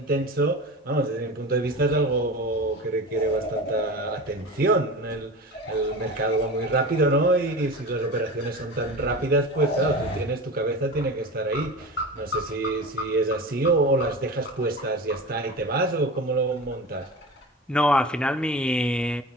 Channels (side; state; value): both; normal; correlation 0.31